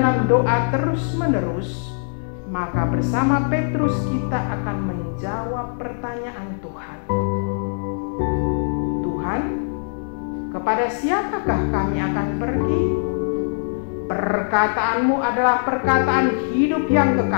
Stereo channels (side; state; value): right; silent; digital silence